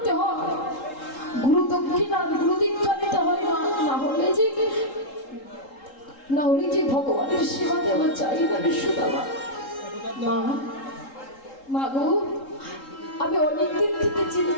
হয়, গুরু দক্ষিণা গুরু দীক্ষা নিতে হয় না, না হলে যে ভগবানের সেবা দেওয়া চাই না রে সুদামা। মা, মা গো, আমি অনেকদিন থেকে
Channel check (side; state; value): right; late; 3.8 ms